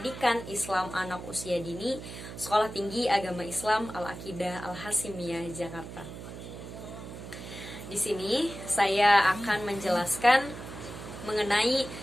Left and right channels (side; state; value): right; noise; hum, 11 dB below the sound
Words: Islam Anak Usia Dini, Sekolah Tinggi Agama Islam Al-Aqidah Al-Hasimiyah, Jakarta. Di sini saya akan menjelaskan mengenai